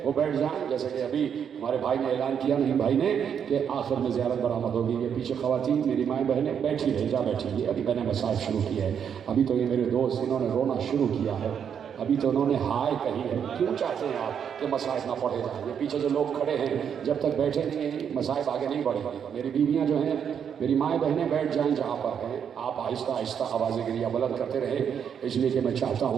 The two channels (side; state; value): left; quieter; 7.9 dB